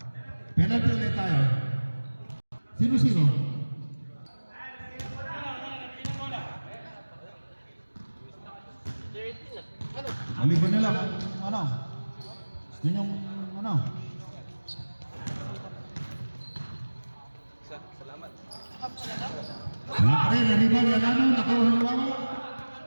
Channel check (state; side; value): inverted; both; correlation -1.00